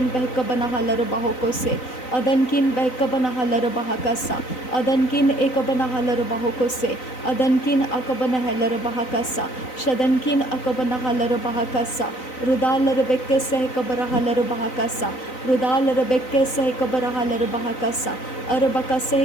behkabana halaro bahokose, adankin behkabana halaro bahakasa, adankin ekabana halaro bahokose, adankin akabana halaro bahakasa, shadankin akabana halaro bahakasa, rudalaro bekhese ekabara halaro bahakasa, rudalaro bekhese ekabara halaro bahakasa,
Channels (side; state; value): right; late; 3.9 ms